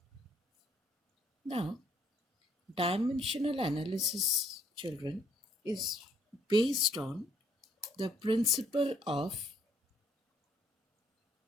Now, dimensional analysis, children, is based on the principle of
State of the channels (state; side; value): normal; both; correlation 0.66